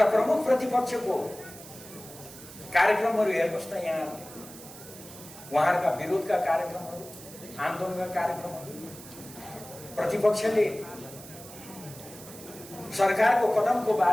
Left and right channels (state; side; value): noise; right; hiss, 16 dB below the sound